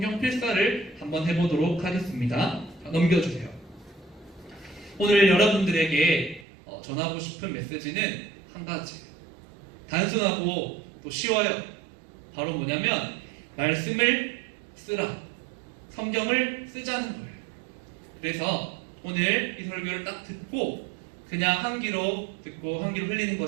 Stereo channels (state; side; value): drops out; left; at 6.5 s